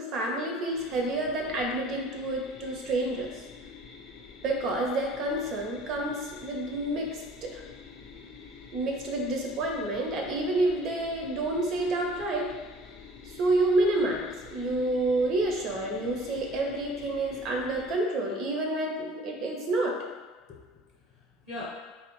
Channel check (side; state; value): both; normal; correlation 0.48